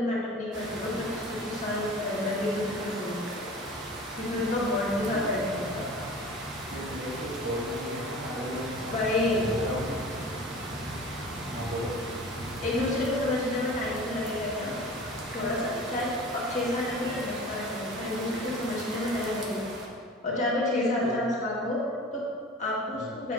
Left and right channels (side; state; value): both; normal; correlation 0.39